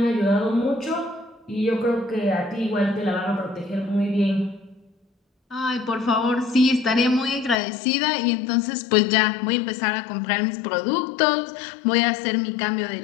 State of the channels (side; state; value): right; drops out; at 7.6 s